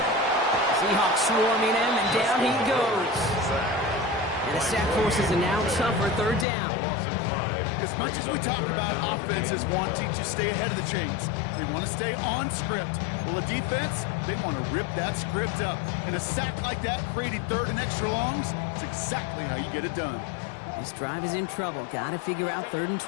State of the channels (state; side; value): drops out; right; at 6.5 s